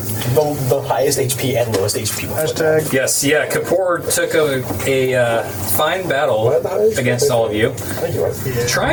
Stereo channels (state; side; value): identical; both; correlation 1.00